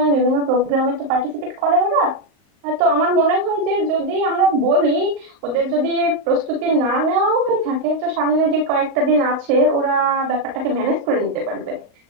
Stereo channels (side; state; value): left; late; 35 ms